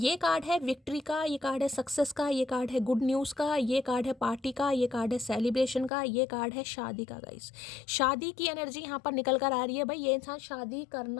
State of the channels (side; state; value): right; drops out; at 5.9 s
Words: कार्ड है विक्ट्री का, ये कार्ड है सक्सेस का, ये कार्ड है गुड न्यूज़ का, ये कार्ड है पार्टी का, ये कार्ड है सेलिब्रेशन का, ये कार्ड है शादी का गाइस। शादी की एनर्जी यहाँ पर निकल कर आ रही है भाई। ये इंसान शादी